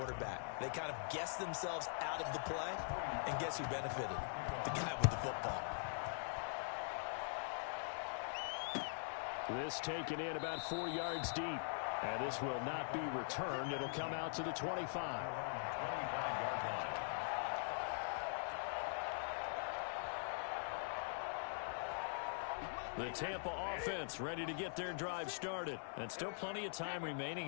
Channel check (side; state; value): right; silent; digital silence